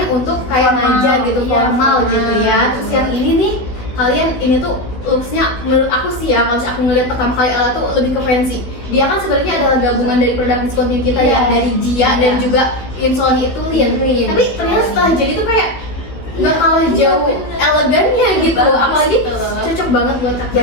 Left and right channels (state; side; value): late; right; 16 ms